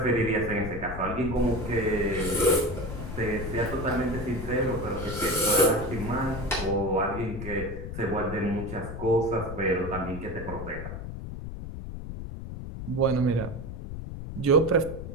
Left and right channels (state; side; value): noise; left; rumble, 8 dB below the sound